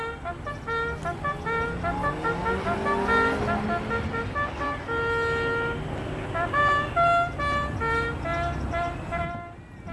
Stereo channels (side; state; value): both; identical; correlation 1.00